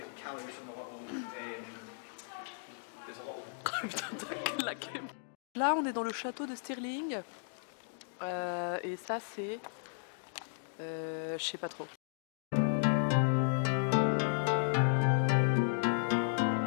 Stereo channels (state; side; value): silent; right; digital silence